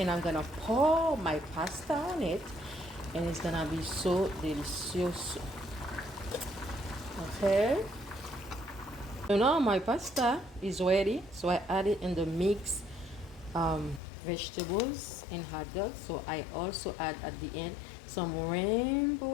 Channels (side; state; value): right; drops out; at 14.0 s